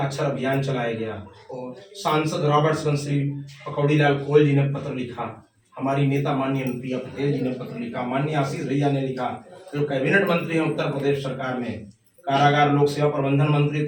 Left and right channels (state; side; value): identical; both; correlation 1.00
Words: अभियान चलाया गया और सांसद रॉबर्ट्सगंज श्री पकौड़ी लाल कोयल जी ने पत्र लिखा, हमारी नेता माननीय अनुप्रिया पटेल जी ने पत्र लिखा, माननीय आशीष भैया ने लिखा, जो कैबिनेट मंत्री हैं उत्तर प्रदेश सरकार में, कारागार लोक सेवा प्रबंधन मंत्री